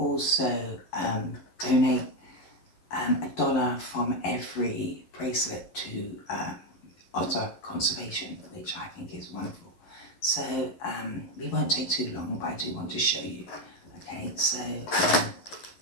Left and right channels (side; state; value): right; late; 11 ms